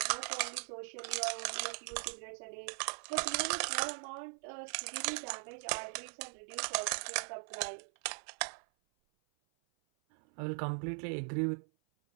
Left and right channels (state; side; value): silent; left; 51 dB below the other